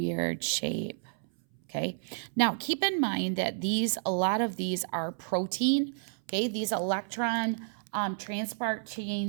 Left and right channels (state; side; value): silent; left; 57 dB below the other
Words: shape, okay? Now, keep in mind that a lot of these are protein, okay? These electron transport